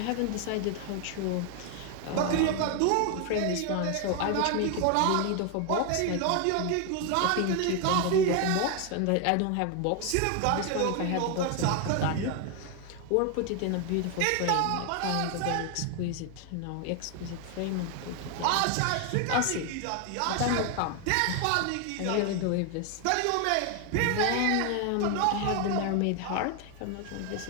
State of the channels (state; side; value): different; both; correlation 0.01